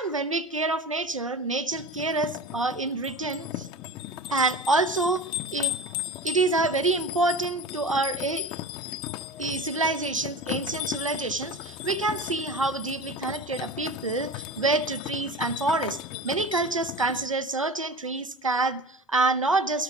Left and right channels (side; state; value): both; normal; correlation 0.33